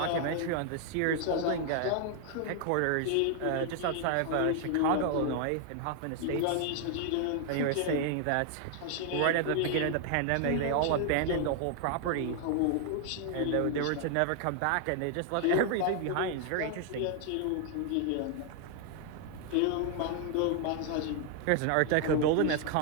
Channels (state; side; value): different; both; correlation 0.00